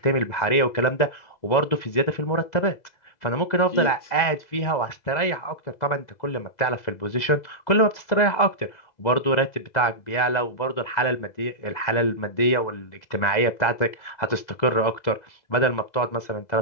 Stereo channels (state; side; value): late; right; 2.0 ms